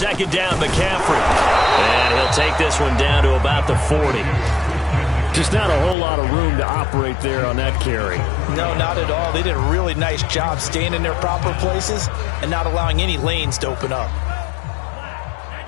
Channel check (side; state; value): right; drops out; at 6.0 s